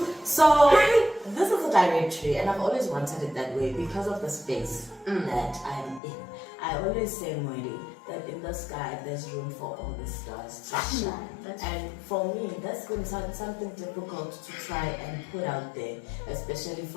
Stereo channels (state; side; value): drops out; right; at 6.0 s